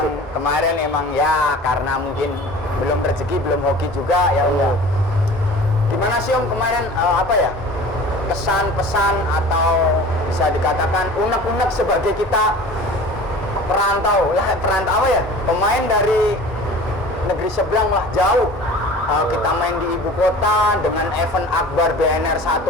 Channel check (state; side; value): normal; both; correlation 0.42